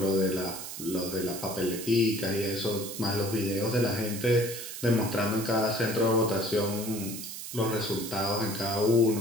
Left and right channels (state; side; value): noise; right; hiss, 9 dB below the sound